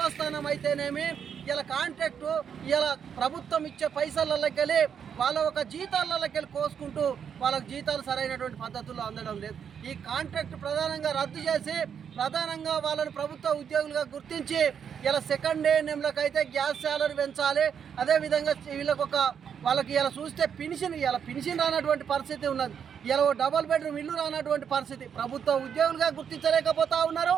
అయితేనేమి ఇలా కాంట్రాక్టు ఇలా ప్రభుత్వం ఇచ్చే పైసలకెళ్ళి వాళ్ళ ఒక జీతాలకెళ్ళి కోసుకుంటూ వాళ్ళకు జీతాలు సరైనటువంటి పద్ధతుల్లో అందడం లేదు. ఈ కాంట్రాక్ట్ ప్రధానంగా రద్దు చేసి ప్రధానంగా వాళ్ళని ప్రభుత్వ ఉద్యోగులుగా గుర్తించి ఇలా సెకండ్ ఏఎన్ఎంలకు అయితే గ్యాస్ శాలరీ పెంచాలి. అదేవిధంగా వాళ్ళకి ఇలా చూస్తే పెన్షన్ రానటువంటి పరిస్థితి ఉన్నది. ఇలా డబుల్ బెడ్రూమ్ ఇల్లు రానటువంటి పరిస్థితి. ప్రభుత్వ ఉద్యోగులుగా గుర్తించలేకపోతా ఉన్నారు.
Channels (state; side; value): quieter; left; 7.7 dB